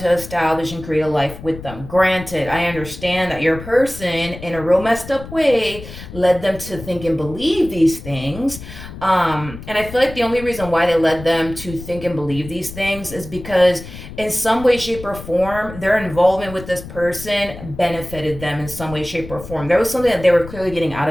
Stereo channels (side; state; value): left; noise; rumble, 13 dB below the sound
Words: establish and create a life with them. Granted, I understand that your person, in a real messed up way, led them to think and believe these things. And I feel like the only reason why they led them to think and believe these things is because in some way, shape, or form, their involvement with this person benefited them in some way, shape, or form. There was something that they were clearly getting out